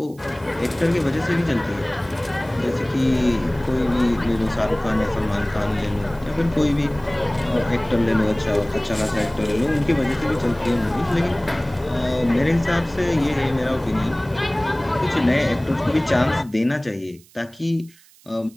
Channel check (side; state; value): right; noise; hiss, 27 dB below the sound